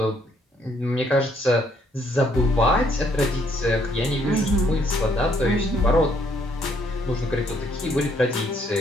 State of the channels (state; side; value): normal; both; correlation 0.68